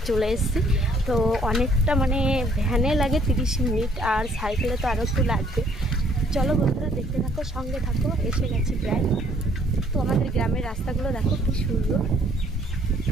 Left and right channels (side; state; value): both; normal; correlation 0.63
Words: চলে এসেছি। তো অনেকটা মানে ভ্যানে লাগে 30 মিনিট আর সাইকেলে তো আরও একটু লাগবে। চলো বন্ধুরা দেখতে থাকো, সঙ্গে থাকো। এসে গেছি প্রায়। তো আমাদের গ্রামের রাস্তাগুলো দেখো কি সুন্দর।